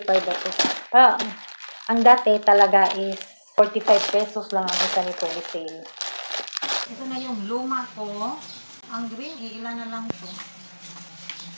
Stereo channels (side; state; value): both; inverted; correlation -1.00